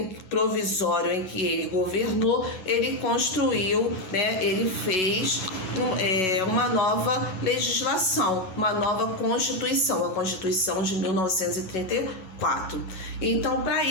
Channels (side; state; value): right; late; 11 ms